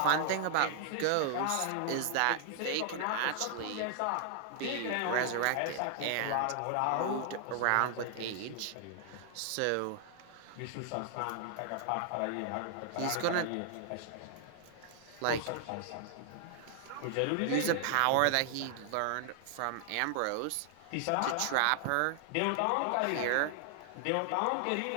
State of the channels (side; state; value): both; different; correlation 0.00